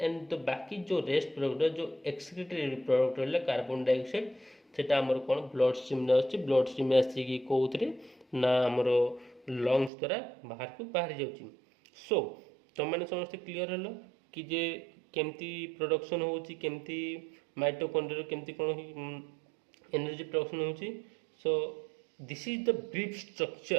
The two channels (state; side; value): drops out; left; at 9.9 s